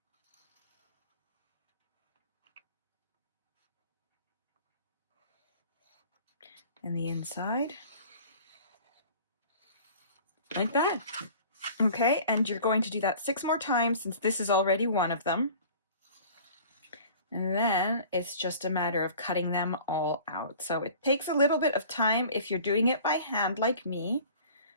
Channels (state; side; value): inverted; both; correlation -0.46